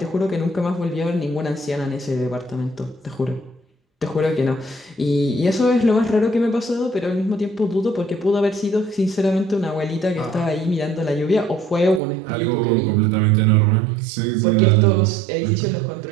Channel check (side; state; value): left; drops out; at 12.0 s